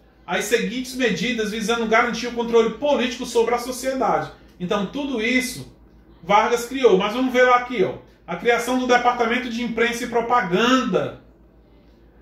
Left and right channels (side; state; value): both; identical; correlation 1.00